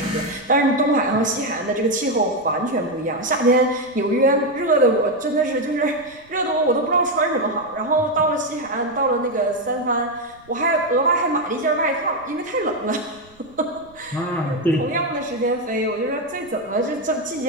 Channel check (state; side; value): noise; right; rumble, 28 dB below the sound